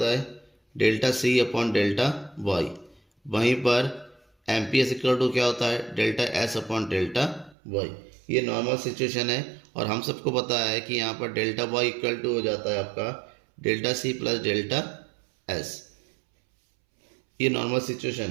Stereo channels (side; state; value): left; drops out; at 7.6 s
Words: है, delta C upon delta Y. वहीं पर M P S equal to क्या होता है, delta S upon delta Y. ये नॉर्मल सिचुएशन है और हम सबको पता है कि यहाँ पर डेल्टा वाई इक्वल टू हो जाता है आपका delta C plus delta S. ये नॉर्मल सिचुएशन